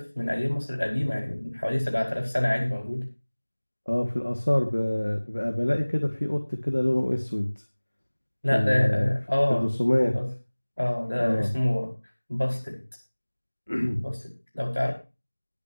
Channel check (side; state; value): both; inverted; correlation -1.00